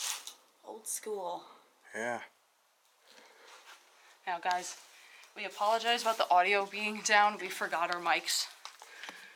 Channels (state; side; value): identical; both; correlation 1.00